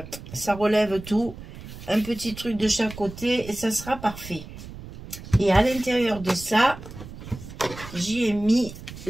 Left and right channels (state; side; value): noise; right; rumble, 14 dB below the sound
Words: ça relève tout. Un petit truc de chaque côté et ça sera parfait. Et à l'intérieur de ça, j'y ai mis